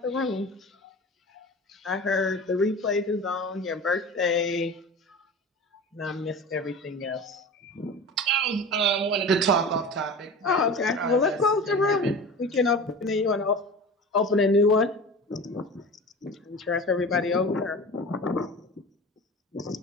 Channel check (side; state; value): both; normal; correlation 0.34